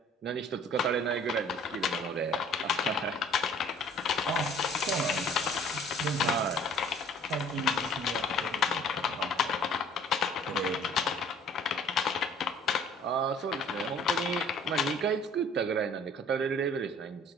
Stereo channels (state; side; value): normal; both; correlation 0.53